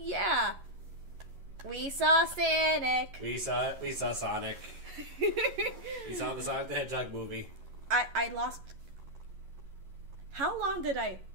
yeah. We saw Sonic. We saw Sonic. We saw the Sonic the Hedgehog movie. I lost. How long did I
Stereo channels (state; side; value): late; left; 11 ms